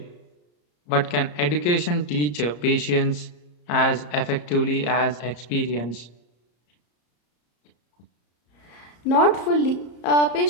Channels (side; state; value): right; late; 34 ms